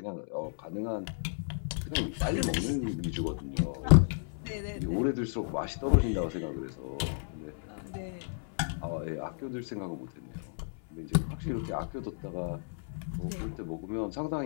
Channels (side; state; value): right; silent; 56 dB below the other